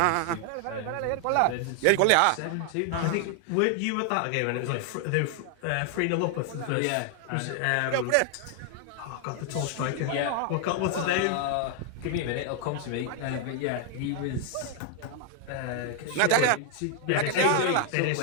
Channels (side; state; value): both; different; correlation 0.00